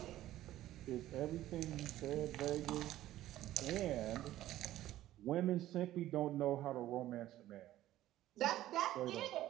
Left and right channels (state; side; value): quieter; left; 14.2 dB